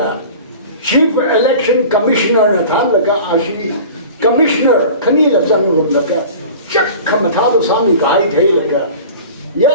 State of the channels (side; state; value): both; inverted; correlation -0.40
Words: Chief Election Commissioner Nathanlaga Ashi. Commissioner Kanila Zangrumlaka, Jack Kamatado Sami Gai Taylaka,